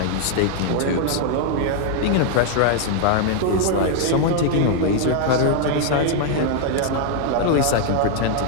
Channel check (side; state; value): both; different; correlation 0.00